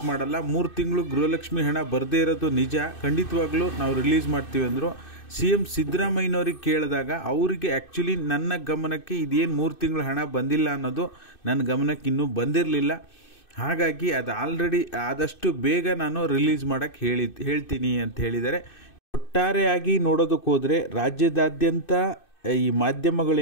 ಮಾಡಲ್ಲ. 3 ತಿಂಗಳು ಗೃಹಲಕ್ಷ್ಮಿ ಹಣ ಬರದೇ ಇರೋದು ನಿಜ, ಖಂಡಿತವಾಗ್ಲೂ ನಾವು ರಿಲೀಸ್ ಮಾಡ್ತೀವಿ ಅಂದರು. CM ಸಿದ್ದರಾಮಯ್ಯನವ್ರಿಗೆ ಕೇಳಿದಾಗ ಅವರಿಗೆ ಆ್ಯಕ್ಚುಲಿ ನನ್ನ ಗಮನಕ್ಕೆ ಇದೇನು 3 ತಿಂಗಳು ಹಣ ಬಂದಿಲ್ಲ ಅನ್ನೋದು ನನ್ನ ಗಮನಕ್ಕೆ ಇನ್ನೂ ಬಂದಿರಲಿಲ್ಲ. ಹಾಗಾಗಿ ಅದು ಆಲ್ರೆಡಿ ಆದಷ್ಟು ಬೇಗ ನಾನು ರಿಲೀಸ್ ಮಾಡೋಕ್ಕೆ ಹೇಳ್ತೀನಿ ಅಂತ ಹೇಳಿದ್ದಾರೆ. ಒಟ್ಟಾರೆಯಾಗಿ ನೋಡೋದಕ್ಕೆ ಹೋದರೆ ರಾಜ್ಯದಾದ್ಯಂತ ಈ ಮಾಧ್ಯಮಗಳು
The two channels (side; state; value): right; late; 2.6 ms